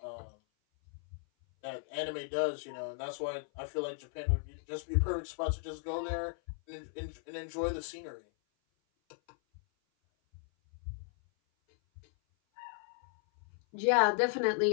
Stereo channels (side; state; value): right; silent; 54 dB below the other